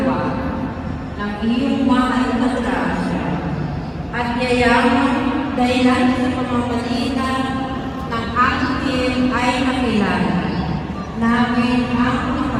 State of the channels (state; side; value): identical; both; correlation 1.00